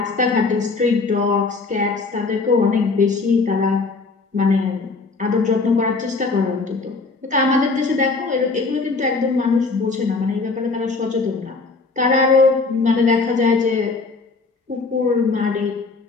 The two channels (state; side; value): quieter; right; 4.0 dB